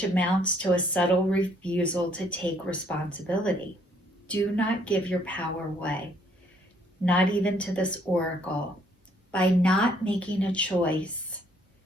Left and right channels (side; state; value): both; normal; correlation 0.66